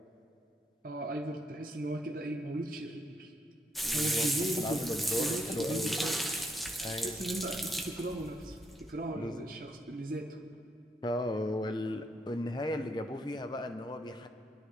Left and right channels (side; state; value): both; normal; correlation 0.75